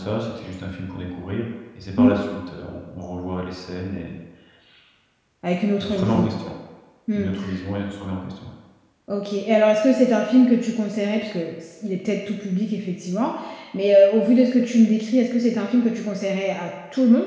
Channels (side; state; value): both; identical; correlation 1.00